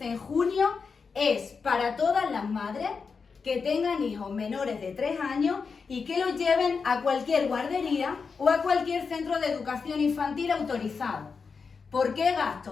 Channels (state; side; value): quieter; right; 5.2 dB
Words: en junio es para todas las madres que tengan hijos menores de 3 años y que los lleven a cualquier guardería o a cualquier centro de educación infantil autorizado. ¿Por qué